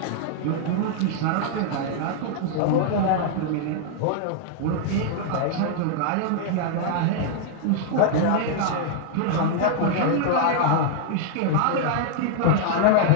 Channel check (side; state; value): both; different; correlation -0.01